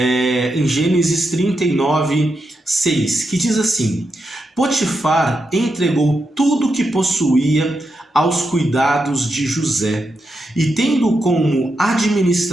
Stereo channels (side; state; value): both; normal; correlation 0.85